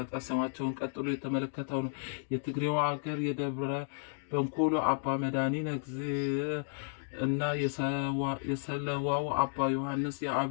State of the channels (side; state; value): right; silent; digital silence